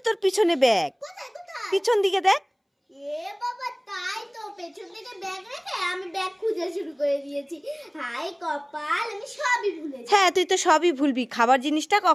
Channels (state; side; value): identical; both; correlation 1.00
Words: তোর পিছনে ব্যাগ। কোথায়? পিছন দিকে দেখ। এ বাবা, তাই তো, পেছন থেকে ব্যাগ রেখে আমি ব্যাগ খুঁজে শুরু করে দিয়েছি। হাই কপাল, আমি সবই ভুলেছি। হ্যাঁ, তুই তো সবই ভুলবি, খাবার জিনিসটা